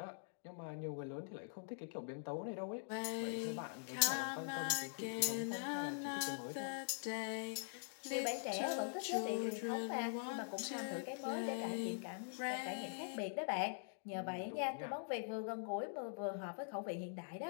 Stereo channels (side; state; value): right; silent; digital silence